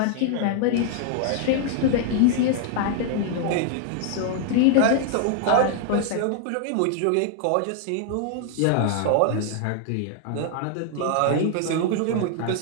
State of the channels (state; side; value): different; both; correlation 0.00